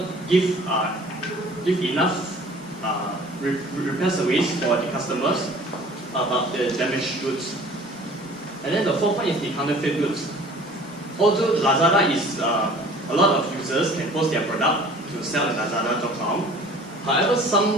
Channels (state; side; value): normal; both; correlation 0.48